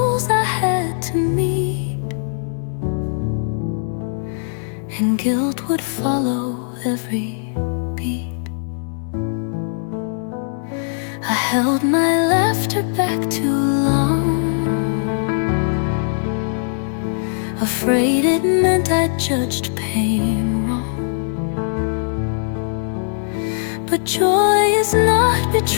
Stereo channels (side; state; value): right; silent; digital silence